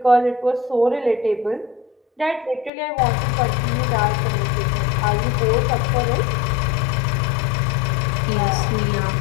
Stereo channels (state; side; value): drops out; right; at 2.7 s